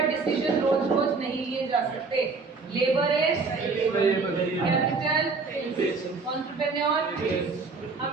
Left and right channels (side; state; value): left; quieter; 4.3 dB